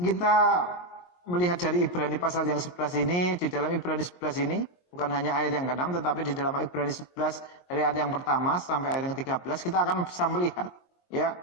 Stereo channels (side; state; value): right; late; 22 ms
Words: melihat dari Ibrani pasal yang 11 ini, di dalam Ibrani 11 ini, bukan hanya ayat yang ke-6, tetapi di dalam Ibrani 11 dari ayat yang pertama sampai ayat yang ke-13 kita akan bisa melihat, ya,